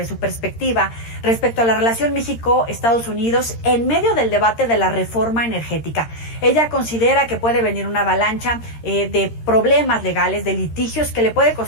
su perspectiva respecto a la relación México-Estados Unidos en medio del debate de la reforma energética. Ella considera que puede venir una avalancha de problemas legales, de litigios que le puede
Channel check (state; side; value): late; right; 13 ms